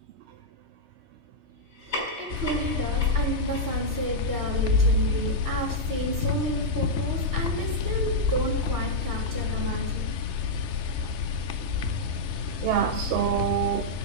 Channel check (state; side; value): late; left; 3.2 ms